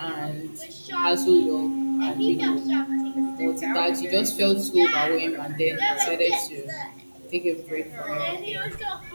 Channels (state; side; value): inverted; both; correlation -1.00